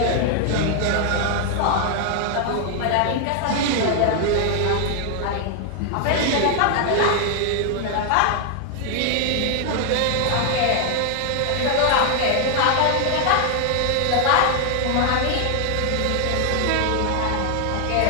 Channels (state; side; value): different; both; correlation 0.00